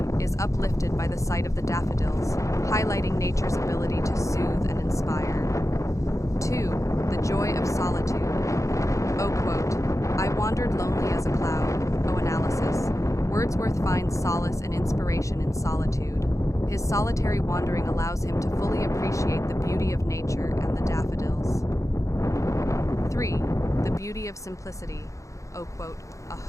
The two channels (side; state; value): right; late; 0.15 ms